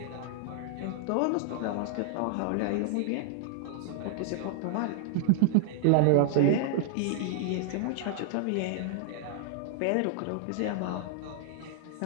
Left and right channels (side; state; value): both; different; correlation -0.01